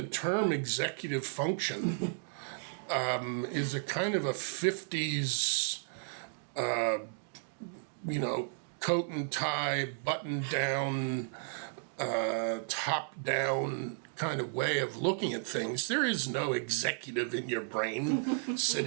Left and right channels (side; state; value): left; silent; digital silence